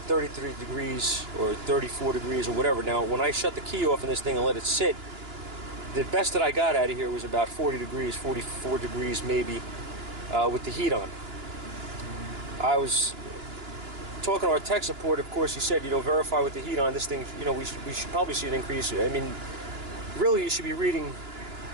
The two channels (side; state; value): left; late; 2.9 ms